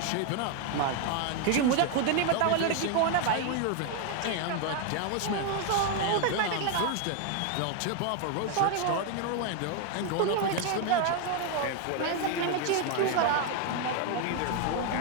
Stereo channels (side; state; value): both; different; correlation 0.01